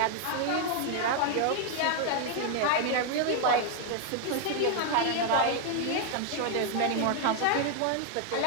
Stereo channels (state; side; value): different; both; correlation 0.00